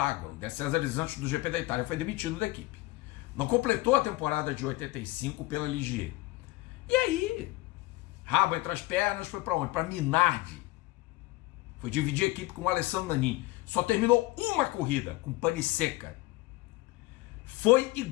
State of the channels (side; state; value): right; quieter; 20.4 dB